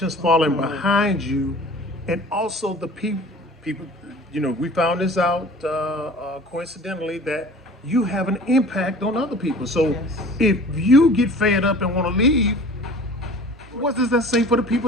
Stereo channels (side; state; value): both; normal; correlation 0.44